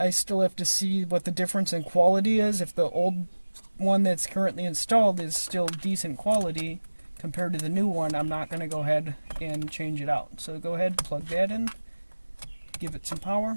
I still have to see what the difference in quality is. If the old one that's currently installed is still decent quality compared to the new one, I'm not going to go ahead and change it out. So go ahead, plug that in, give it some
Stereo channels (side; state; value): both; inverted; correlation -1.00